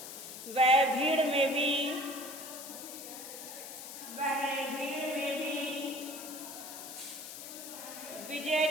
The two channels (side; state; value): left; noise; hiss, 10 dB below the sound